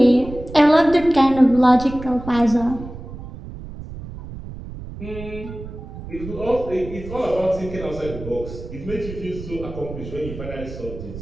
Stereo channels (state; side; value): noise; right; rumble, 12 dB below the sound